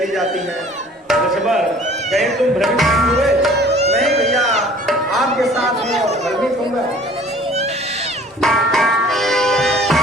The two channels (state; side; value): normal; both; correlation 0.51